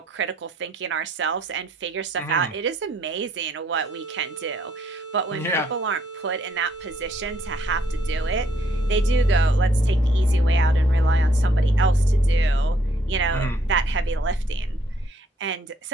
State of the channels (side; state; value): both; normal; correlation 0.68